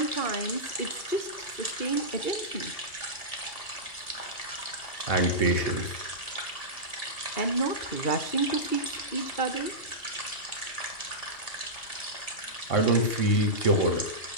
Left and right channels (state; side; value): late; right; 2.7 ms